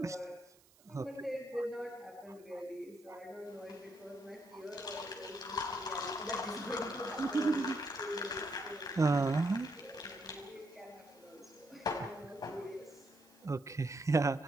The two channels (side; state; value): right; noise; hiss, 28 dB below the sound